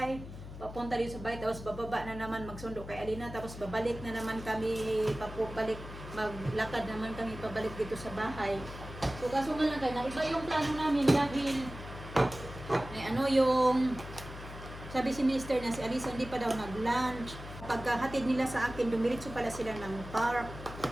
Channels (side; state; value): left; noise; hum, 12 dB below the sound